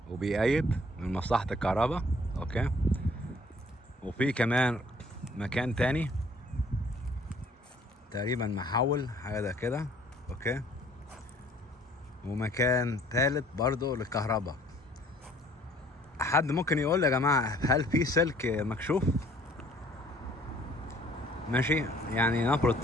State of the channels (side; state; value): both; normal; correlation 0.57